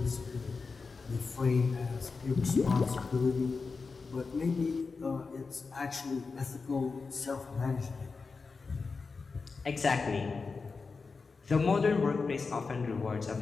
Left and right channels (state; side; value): quieter; right; 4.5 dB